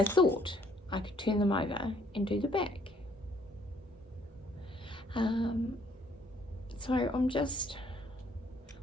thought I could turn them over and do the back. So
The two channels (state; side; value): normal; both; correlation 0.64